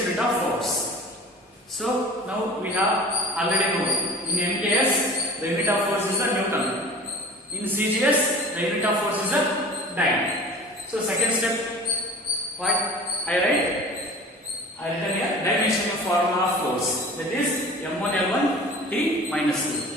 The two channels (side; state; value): both; normal; correlation 0.41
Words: unit of force. So now we have already know in MKS the unit of force is a Newton, in CGS the unit of force is a dyne. So second step, what I write? I written here dimensional formula of force, that is M1 L1 T minus 2.